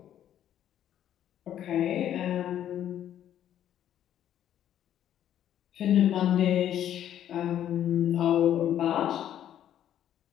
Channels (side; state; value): right; quieter; 10.8 dB